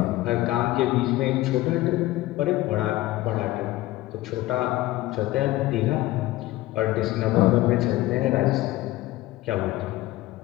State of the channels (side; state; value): right; quieter; 17.3 dB